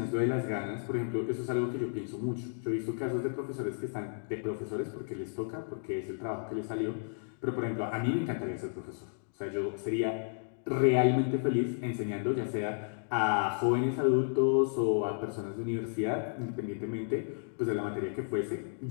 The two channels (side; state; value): right; silent; digital silence